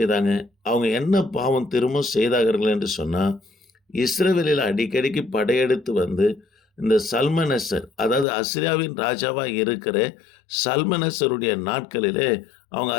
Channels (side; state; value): right; drops out; at 8.2 s